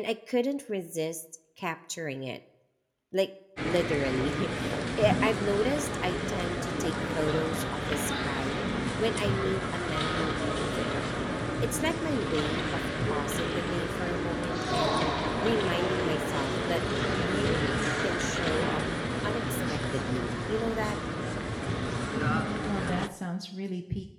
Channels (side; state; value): both; identical; correlation 1.00